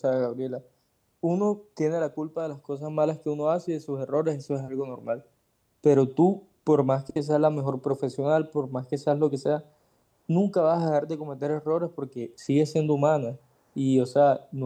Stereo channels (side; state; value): both; identical; correlation 1.00